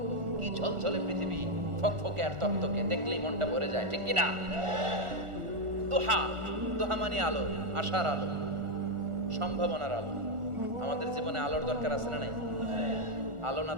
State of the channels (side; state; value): left; late; 1.4 ms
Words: কি ঝলঝলে পৃথিবী, ফকফকে আর তকতকে, দেখলেই মনটা ভরে যায়, ঠিক কি না? দুহা, দুহা মানে আলো, আশার আলো, সম্ভাবনার আলো। আমাদের জীবনে আলোর দরকার আছে না নাই? আলো না